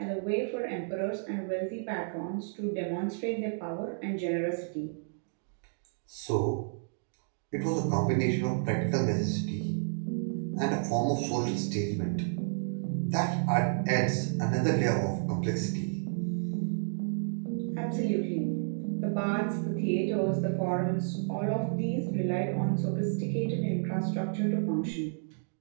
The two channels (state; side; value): silent; left; digital silence